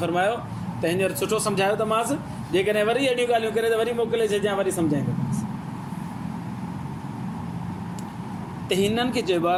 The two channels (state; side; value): identical; both; correlation 1.00